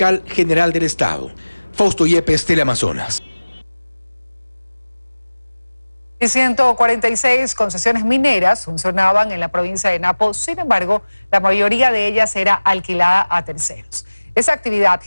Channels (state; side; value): inverted; both; correlation -1.00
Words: general del Estado. Fausto Yepes, Teleamazonas. Y 146 concesiones mineras funcionaban en la provincia de Napo, sin embargo, la mayoría de ellas era alquilada a terceros. Esa actividad